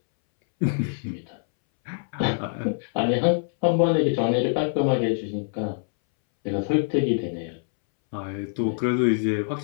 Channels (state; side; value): silent; right; 62 dB below the other